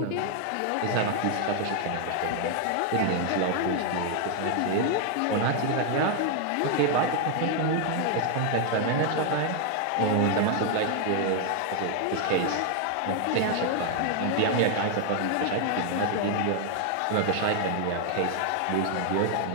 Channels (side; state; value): both; different; correlation 0.00